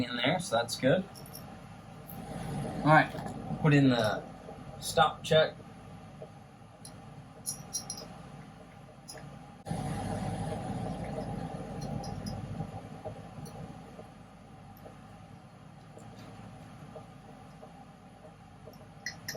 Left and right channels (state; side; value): identical; both; correlation 1.00